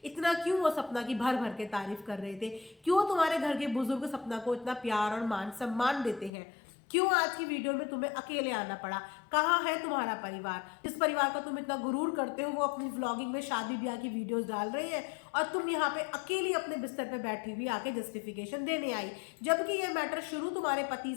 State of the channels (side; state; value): right; drops out; at 6.3 s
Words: इतना क्यों वो सपना की भर भर के तारीफ कर रहे थे, क्यों तुम्हारे घर के बुजुर्ग सपना को इतना प्यार और मान सम्मान देते हैं, क्यों आज की वीडियो में तुम्हें अकेले आना पड़ा, कहाँ है तुम्हारा परिवार, जिस परिवार का तुम इतना गुरूर करते हो वो अपनी व्लॉगिंग में शादी ब्याह की वीडियोस डाल रहे हैं और तुम यहाँ पे अकेली अपने बिस्तर पे बैठी हुई आके जस्टिफिकेशन देने आई। जबकि ये मैटर शुरू तुम्हारे पति